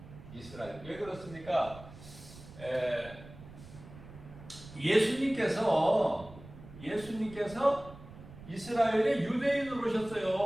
이스라엘. 왜 그렇습니까? 예수님께서 이스라엘의 유대인으로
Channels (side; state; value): right; noise; rumble, 17 dB below the sound